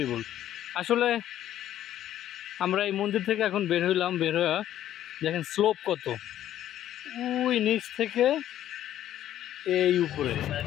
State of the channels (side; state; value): right; quieter; 12.0 dB